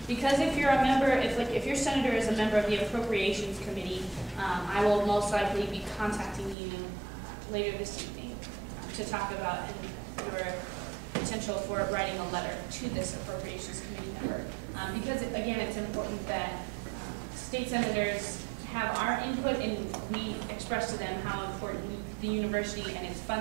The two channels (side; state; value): left; drops out; at 6.6 s